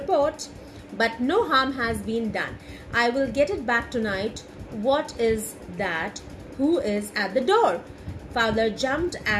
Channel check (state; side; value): identical; both; correlation 1.00